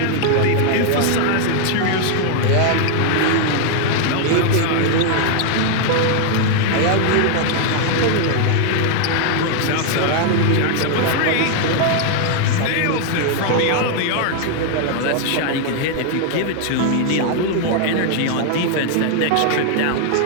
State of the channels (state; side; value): different; both; correlation 0.00